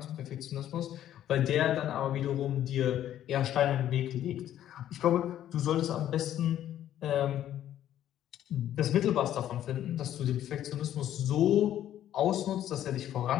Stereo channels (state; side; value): quieter; right; 11.6 dB